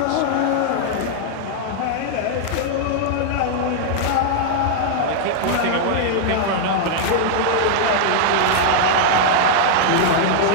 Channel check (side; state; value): both; different; correlation -0.01